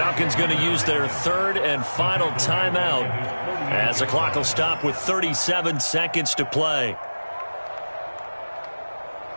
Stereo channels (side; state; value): both; inverted; correlation -1.00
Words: going to use their third and final timeout, as the clock will stop with 37 seconds to play.